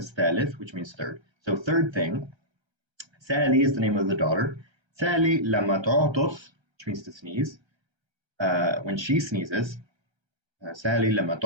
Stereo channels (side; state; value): left; late; 1.3 ms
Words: ثالث, which means third. So third thing, Sally is the name of the daughter. Sally لما تعطس, which means to sneeze. When she sneezes, Sally لما